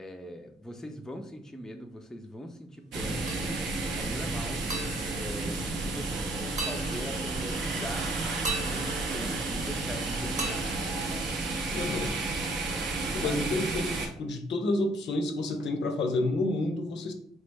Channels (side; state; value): both; normal; correlation 0.63